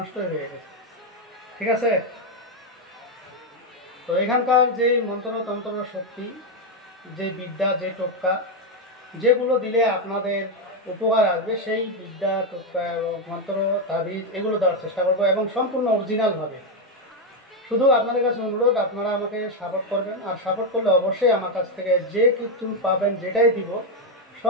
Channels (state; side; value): normal; both; correlation 0.05